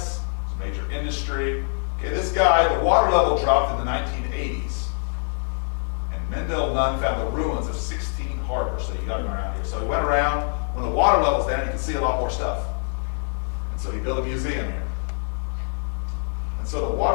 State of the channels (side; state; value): right; silent; 58 dB below the other